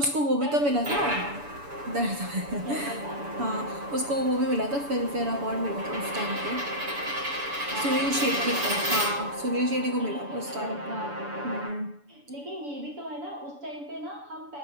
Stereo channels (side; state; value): left; late; 7.0 ms